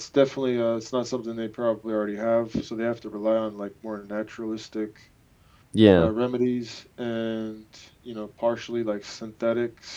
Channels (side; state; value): both; identical; correlation 1.00